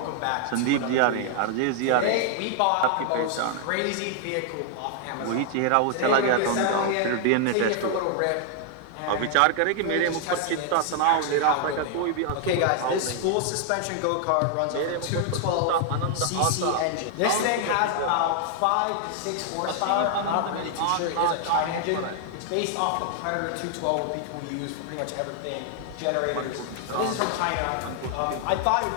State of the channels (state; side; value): different; both; correlation 0.00